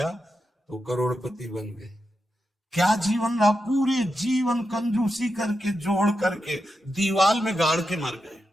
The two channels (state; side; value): normal; both; correlation 0.88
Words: तो करोड़पति बन गए। क्या जीवन रहा, पूरे जीवन कंजूसी करके जोड़ करके दीवाल में गाड़ के मर गए